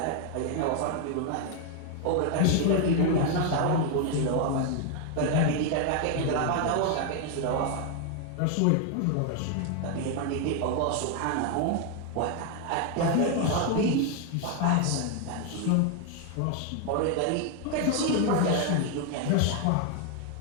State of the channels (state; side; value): different; both; correlation 0.01